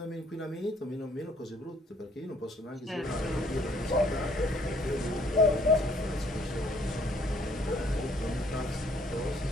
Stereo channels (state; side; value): normal; both; correlation 0.62